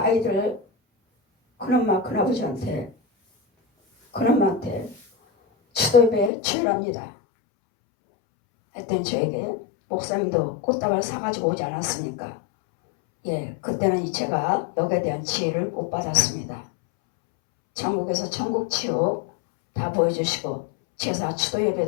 큰엄마 큰아버지한테 큰엄마한테 추도예배 주일합니다 했더니 저에게 목사님도 꽃다발 사가지고 오지 않았습니까? 예, 그때는 제가 여기에 대한 지혜를 못 받았습니다. 전국에서 천국 치유 다 보여주시고 제사 추도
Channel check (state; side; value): drops out; right; at 6.3 s